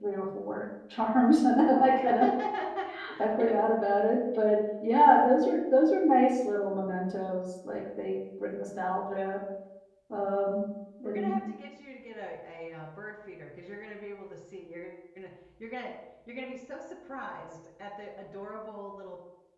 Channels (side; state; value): both; identical; correlation 1.00